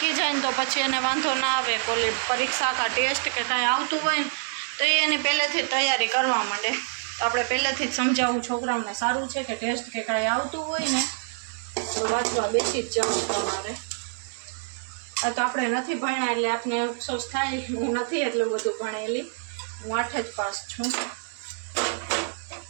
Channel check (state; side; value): silent; left; digital silence